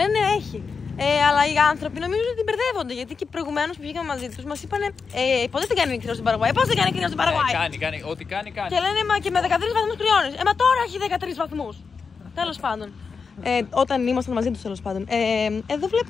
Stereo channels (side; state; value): right; quieter; 5.3 dB